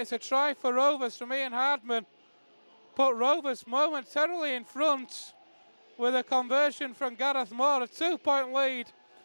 a try for Rovers from Ian Hardman. Put Rovers momentarily in front with a conversion from Gareth Moore, a 2-point lead.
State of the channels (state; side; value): inverted; both; correlation -1.00